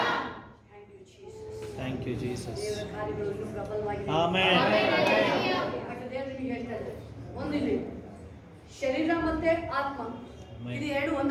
Thank you, Jesus. Thank you, Jesus. ದೇವರ ಕಾರ್ಯಗಳು ಇನ್ನೂ ಪ್ರಬಲವಾಗಿದೆ. Amen. ಯಾಕಂದ್ರೆ ದೇವರು ನಿಮಗೆ ಹೇಳ್ತಾ ಇದ್ದಾರೆ, ಒಂದಿಲ್ಲಿ ಶರೀರ ಮತ್ತೆ ಆತ್ಮ ಇದು ಎರಡು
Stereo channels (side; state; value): both; identical; correlation 1.00